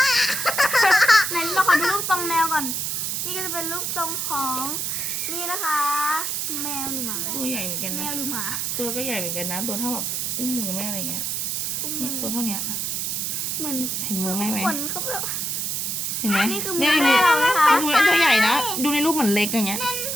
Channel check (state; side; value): noise; right; hiss, 1 dB below the sound